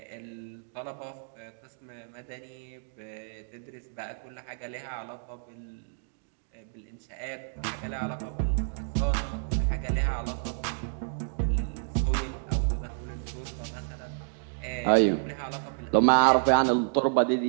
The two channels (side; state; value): left; silent; digital silence